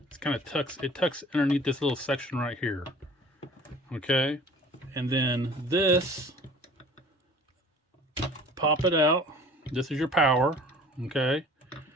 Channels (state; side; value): normal; both; correlation 0.47